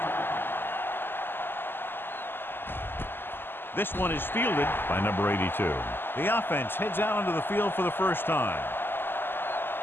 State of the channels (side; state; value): right; late; 0.10 ms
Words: This one is fielded by number 82. The offense heads out onto the field for the first time.